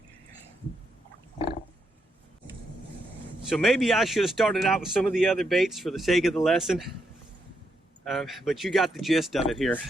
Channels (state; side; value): normal; both; correlation 0.80